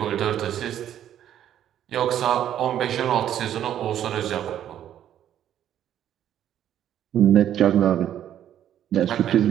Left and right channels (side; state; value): left; quieter; 10.8 dB